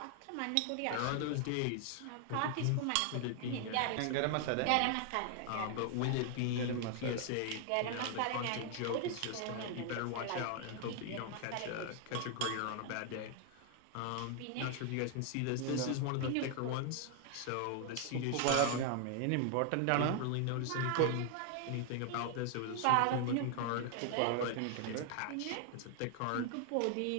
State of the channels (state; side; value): different; both; correlation 0.00